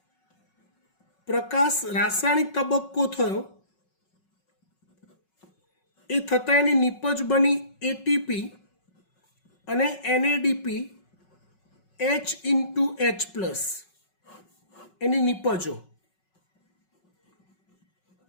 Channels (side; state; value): right; late; 5.4 ms